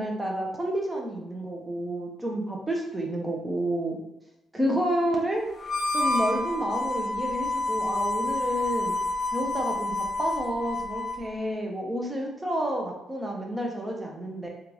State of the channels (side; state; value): both; normal; correlation 0.83